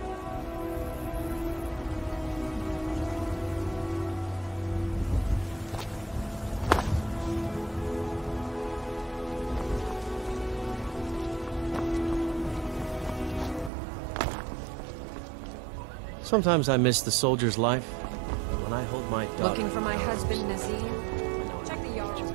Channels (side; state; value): left; drops out; at 13.7 s